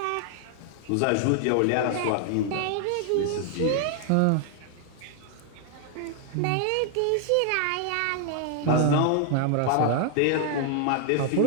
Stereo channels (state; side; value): different; both; correlation 0.00